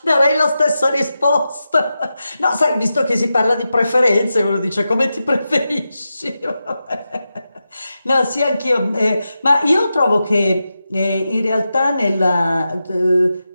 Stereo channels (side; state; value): both; inverted; correlation -0.90